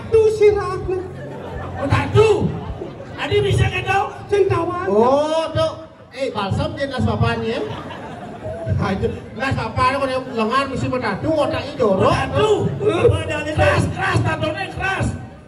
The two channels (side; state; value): both; identical; correlation 1.00